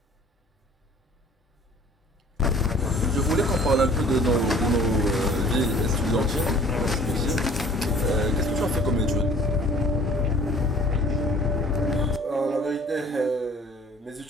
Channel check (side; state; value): both; normal; correlation 0.51